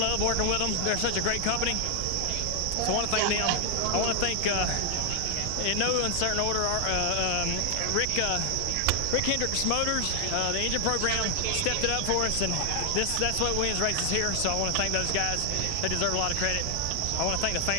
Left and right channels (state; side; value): different; both; correlation 0.00